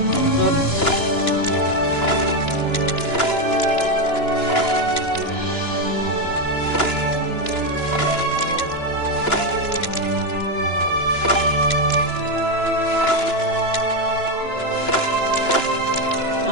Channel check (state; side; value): late; right; 2.9 ms